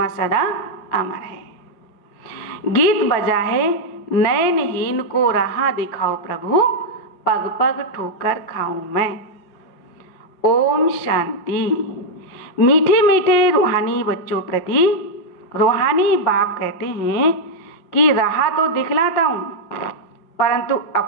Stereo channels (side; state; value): right; late; 5.0 ms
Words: सदा अमर है। गीत बजा है, नयनहीन को राह दिखाओ प्रभु, पग पग ठोकर खाऊं मैं। ओम शांति। मीठे मीठे रूहानी बच्चों प्रति रूहानी बाप कहते हैं कि राह तो दिखलाता हूं, परंतु